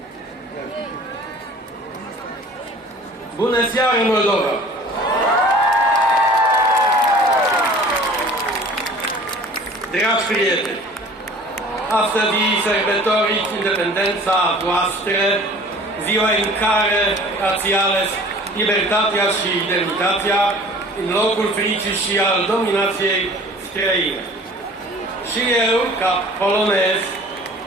Yeah. Bună seara, Moldova! Dragi prieteni, astăzi sărbătoriți independența voastră, ziua în care ați ales libertatea și demnitatea în locul fricii și al dominației străine. Și eu, ca polonez,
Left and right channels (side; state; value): both; normal; correlation 0.47